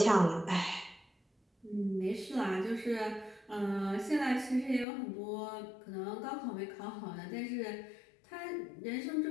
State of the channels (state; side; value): drops out; right; at 4.9 s